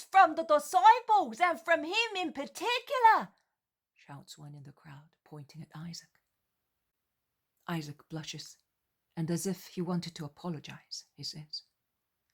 from the disciples and from him in particular, shouts one in the crowd, pointing at Isaac. Isaac blushes, and as if he wanted to apologize, he says,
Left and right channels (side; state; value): both; identical; correlation 1.00